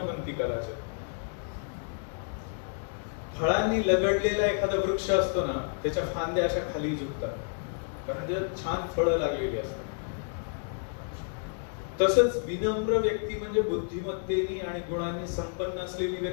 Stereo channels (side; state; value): right; silent; 58 dB below the other